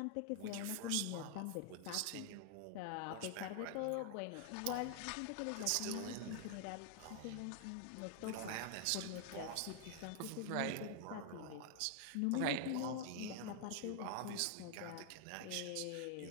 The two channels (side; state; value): both; different; correlation 0.00